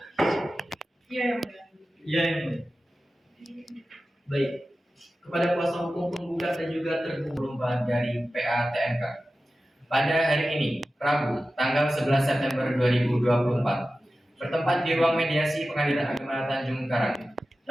Ya, yang Baik, kepada kuasa hukum penggugat dan juga tergugat dari PATMK. Pada hari ini, Rabu, tanggal 11 September 2024, bertempat di ruang mediasi Pengadilan Agama Tanjung Karang.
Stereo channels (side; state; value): both; normal; correlation 0.94